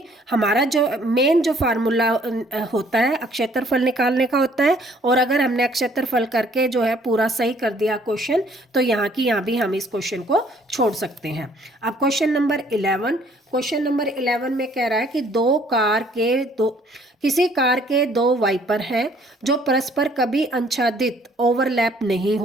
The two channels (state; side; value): normal; both; correlation 0.61